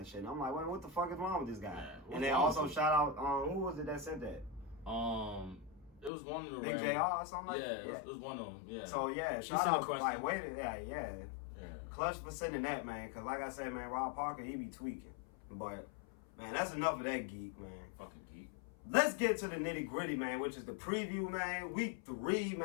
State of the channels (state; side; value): drops out; right; at 6.1 s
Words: shit. And I'm like, wait, what the fuck is wrong with this guy? Yeah, and then also shout out, who was it that said that? It was one of the Big JR or something like that? Yeah, yeah, it was one of them, yeah. So, yeah, shout out, like, wait, yeah. Clutch for sending that, man, because like I said, man, Rob Parker, he be tweaking. But, man, that's enough of that geek, man. Fucking geek. Let's get to the nitty-gritty, man, which is the preview, man. Week 3,